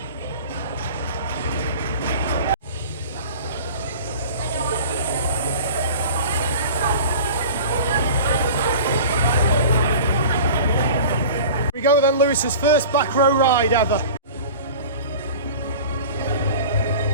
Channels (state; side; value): inverted; both; correlation -0.39